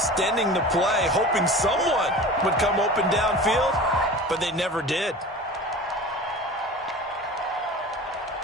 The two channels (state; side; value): normal; both; correlation 0.36